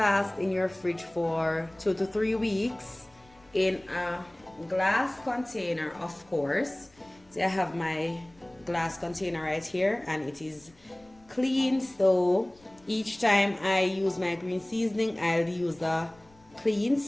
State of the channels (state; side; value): noise; left; rumble, 29 dB below the sound